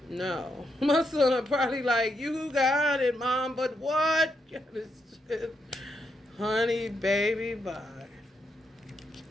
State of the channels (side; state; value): both; normal; correlation 0.80